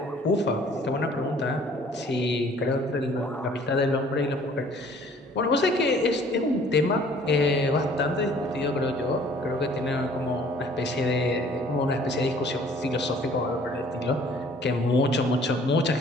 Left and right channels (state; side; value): normal; both; correlation 0.55